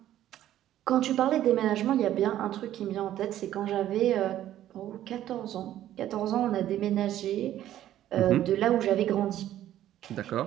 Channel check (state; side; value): quieter; left; 12.5 dB